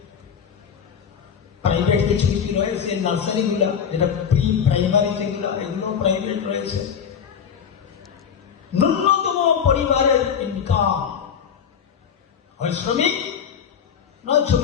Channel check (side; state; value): right; quieter; 7.5 dB